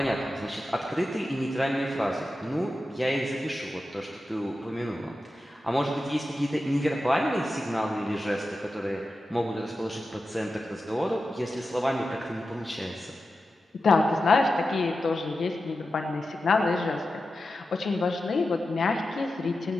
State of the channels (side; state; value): both; normal; correlation 0.92